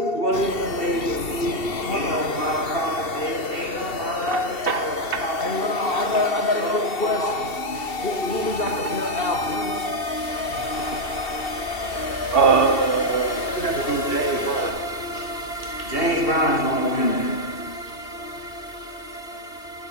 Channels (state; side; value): late; right; 2.7 ms